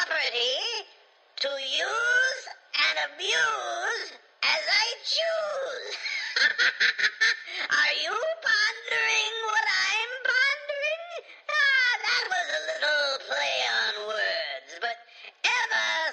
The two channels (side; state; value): both; identical; correlation 1.00